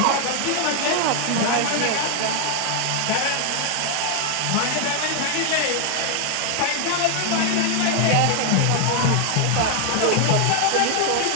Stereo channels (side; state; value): both; different; correlation 0.00